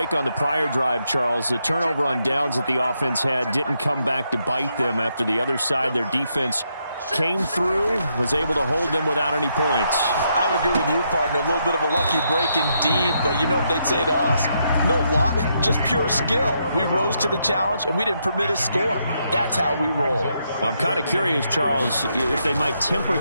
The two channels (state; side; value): inverted; both; correlation -0.78